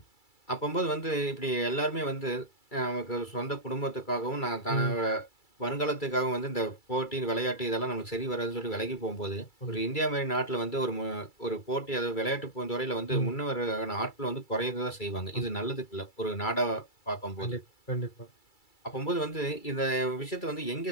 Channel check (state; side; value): late; right; 2.3 ms